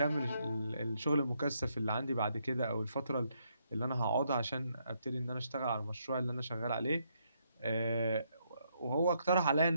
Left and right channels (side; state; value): both; inverted; correlation -0.75